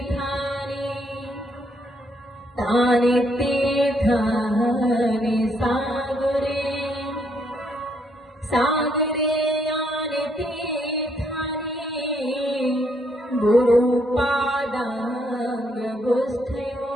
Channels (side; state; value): both; normal; correlation 0.73